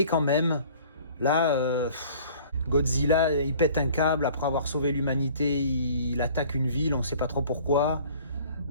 quand même, là, Godzilla, il pète un câble. Après avoir sauvé l'humanité, il attaque une ville, on sait pas trop pourquoi.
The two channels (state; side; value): inverted; both; correlation -0.50